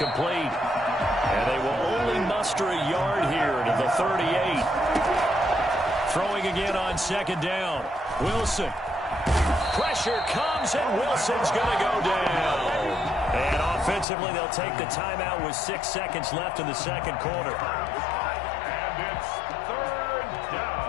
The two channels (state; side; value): drops out; right; at 14.1 s